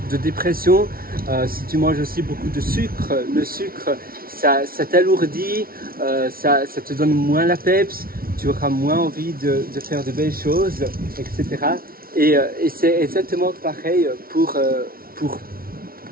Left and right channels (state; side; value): late; left; 0.43 ms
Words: dépression. Si tu manges aussi beaucoup de sucre, le sucre, ça t'alourdit, ça te donne moins la peps, tu auras moins envie de faire de belles choses, etc. Et c'est exactement pareil pour